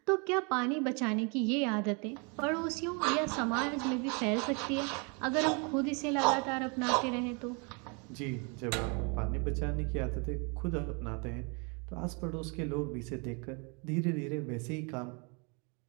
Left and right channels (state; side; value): quieter; left; 33.3 dB